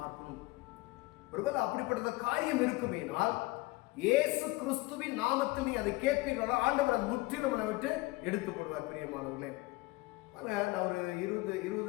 பார்க்கணும். ஒருவேளை அப்படிப்பட்ட காரியம் இருக்குமேனால் இயேசு கிறிஸ்துவின் நாமத்தில் நீ அதை கேட்பீர்களா, ஆண்டவர் அதை முற்றிலும் விட்டு எடுத்து போடுவார். பிரியமானவர்களே, நான் ஒரு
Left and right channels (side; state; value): right; quieter; 21.7 dB